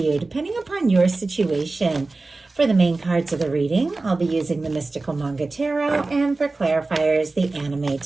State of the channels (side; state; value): left; quieter; 3.4 dB